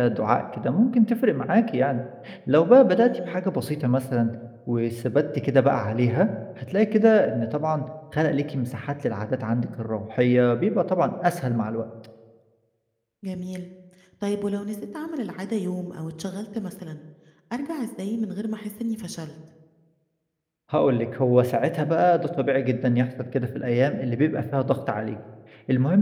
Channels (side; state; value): both; identical; correlation 1.00